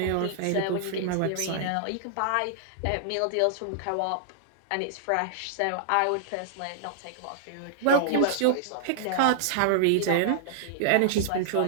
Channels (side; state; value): both; different; correlation -0.01